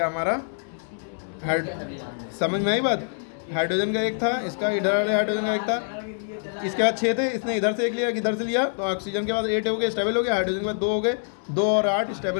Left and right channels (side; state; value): right; silent; 62 dB below the other